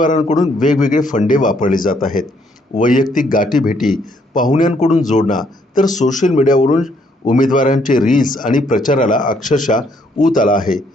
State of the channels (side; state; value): both; normal; correlation 0.69